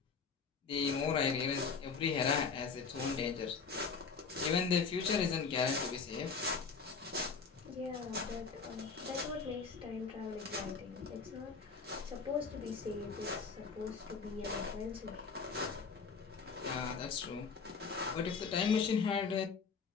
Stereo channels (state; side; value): quieter; right; 5.3 dB